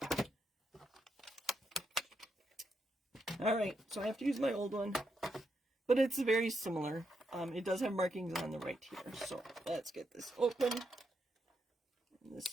All right, so I have to use my old one, but it's very similar. It does have markings on the right here, so let's get this open. And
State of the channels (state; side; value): normal; both; correlation 0.81